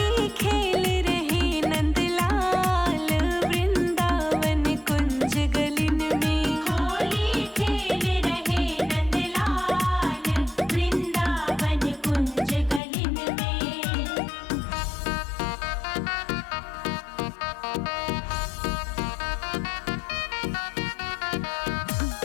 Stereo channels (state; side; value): drops out; right; at 12.8 s